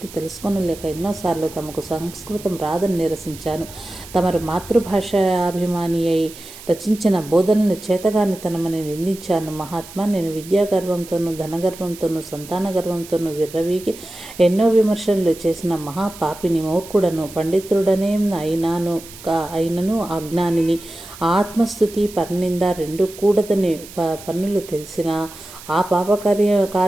తెలుసుకొనలేక ఎన్నోసార్లు తమకు సంస్కృతం రాదని నిరసించాను. తమరు మాతృభాషాభిమాని అయి రచించిన బోధనలు చేతగానితనమని నిందించాను. మహాత్మా, నేను విద్యాగర్వంతోనూ ధనగర్వంతోనూ సంతాన గర్వంతోనూ విర్రవీగి ఎన్నో విమర్శలు చేసిన మహాపాపిని, మూర్ఖుడను, పండితుడనే అయినను అజ్ఞానిని. ఆత్మస్థుతి పరనింద రెండు కూడదని పన్నులు తెలిసిన ఆ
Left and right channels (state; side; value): noise; right; hiss, 17 dB below the sound